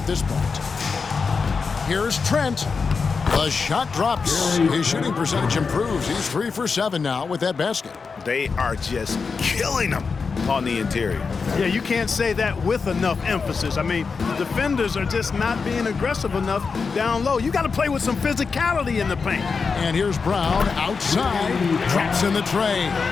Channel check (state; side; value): quieter; right; 5.0 dB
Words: this point. Here's Trent. The shot drops. His shooting percentage improves. He's 3 for 7 now with that basket. They are just killing them on the interior. Yeah, you can't say that with enough emphasis. I mean, the defenders are just not being aggressive enough down low. You got to play with some physicality in the paint. And here's Brown outside. Drops in the tray.